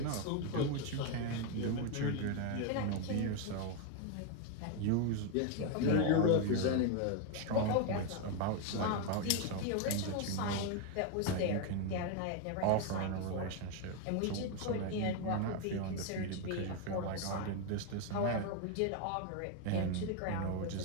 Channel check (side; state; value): both; different; correlation 0.01